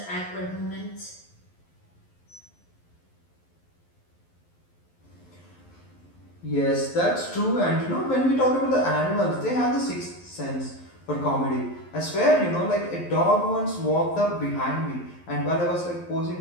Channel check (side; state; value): right; late; 11 ms